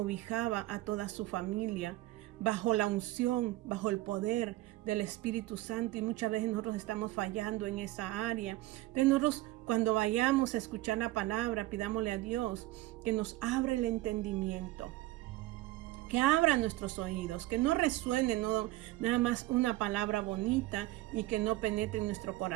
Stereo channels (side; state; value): left; quieter; 17.7 dB